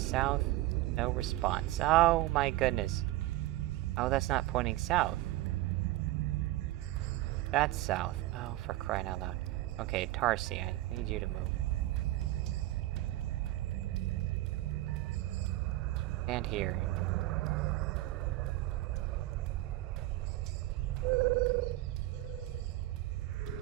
No response. Oh my goodness. Oh, that's not pointing south. That's south. Oh, for crying out loud. Okay, Tarsi, I need you to move. And here.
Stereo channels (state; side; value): quieter; left; 16.7 dB